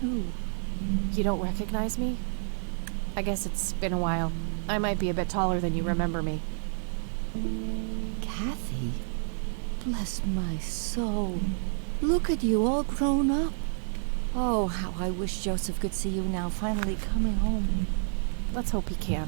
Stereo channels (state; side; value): silent; left; digital silence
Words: Who? You don't recognize me? I guess it's been a while. I might be a bit taller than you remember me. Kathy? Bless my soul. Look at you, all grown up. Oh, how I wish Joseph could see you now, finally coming home. Let's hope he